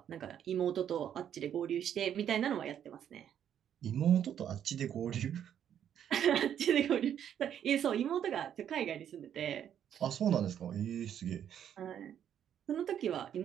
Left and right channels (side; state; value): left; quieter; 9.5 dB